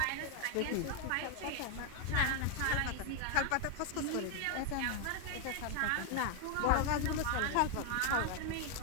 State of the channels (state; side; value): different; both; correlation 0.00